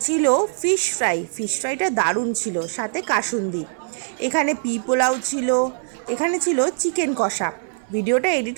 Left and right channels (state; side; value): silent; left; digital silence